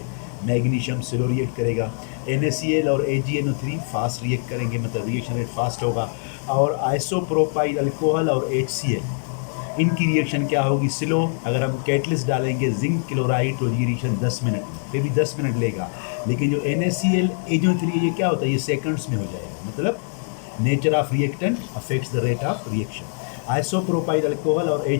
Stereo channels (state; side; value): silent; right; digital silence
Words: मैग्नीशियम स्लो रिएक्ट करेगा। NaCl और AgNO3 फास्ट रिएक्ट करेंगे, मतलब रिएक्शन रेट फास्ट होगा। और आइसोप्रोपाइल अल्कोहल और HCl, इनकी रिएक्शन क्या होगी, स्लो। अगर हम कैटलिस्ट डालेंगे जिंक क्लोराइड तो ये रिएक्शन 10 मिनट, फिर भी 10 मिनट लेगा। लेकिन जो NaCl AgNO3 ये क्या होता है, ये सेकंड्स में हो जाएगा। मतलब nature of reactant affects the rate of reaction. Isopropyl alcohol और